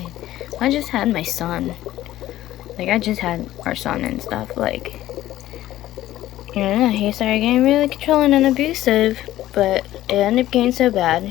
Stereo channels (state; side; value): quieter; right; 14.5 dB